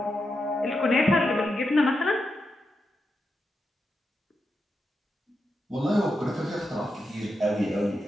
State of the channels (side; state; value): both; normal; correlation 0.86